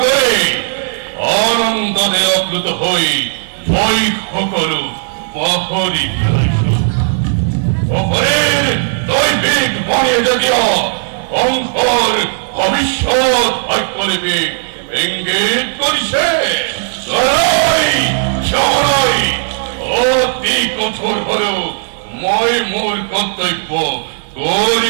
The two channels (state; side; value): silent; left; digital silence